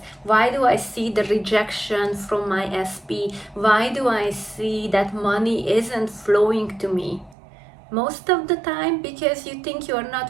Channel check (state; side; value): drops out; left; at 7.4 s